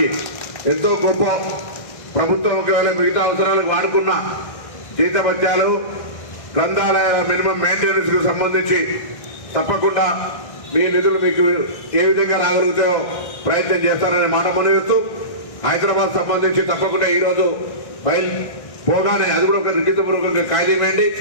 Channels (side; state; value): right; late; 1.6 ms